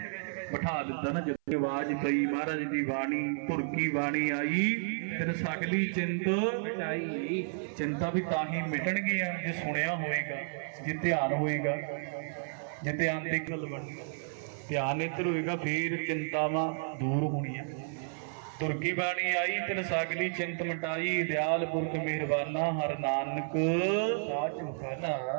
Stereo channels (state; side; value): silent; left; 56 dB below the other